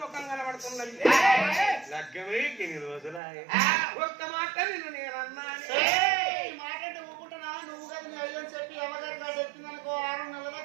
ముఖం కనబడుతున్నది లగ్గమై ఎన్ని రోజులాయ ఒక్క మాట నిన్ను నేనన్నాను మాట అంటే ఊకుంటున్నా నువ్వు కదా నీ అయ్యని చెప్పి అమ్మగారి కాదు ఎత్తిందనుకో 6 నెలల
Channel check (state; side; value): drops out; left; at 3.2 s